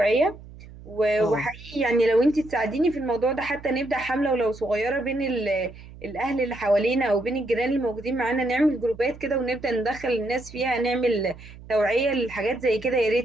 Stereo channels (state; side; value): noise; right; hum, 18 dB below the sound